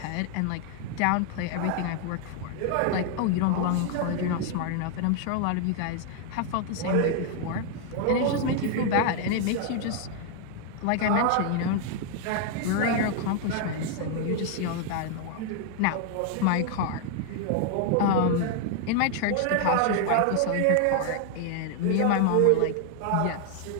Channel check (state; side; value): different; both; correlation 0.00